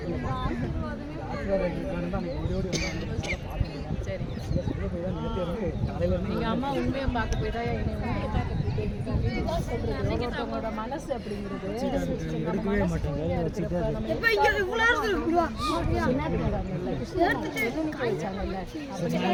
சரி. எங்க அம்மா உண்மையை பார்க்க போய் தான் என்னை உண்மையை பார்க்க ஒருத்தவங்களோட மனசு அப்படிங்கிறது எடுக்கவே மாட்டாங்க.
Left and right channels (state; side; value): identical; both; correlation 1.00